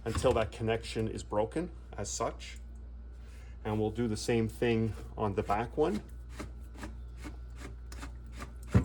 until that connection is broken as such. And we'll do the same thing on the back one.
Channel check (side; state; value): both; identical; correlation 1.00